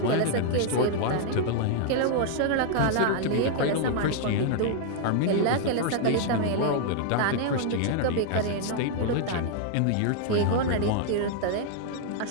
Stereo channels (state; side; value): different; both; correlation 0.00